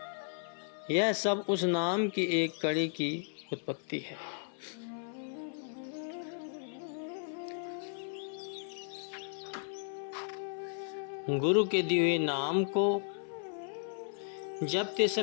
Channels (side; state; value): right; silent; 55 dB below the other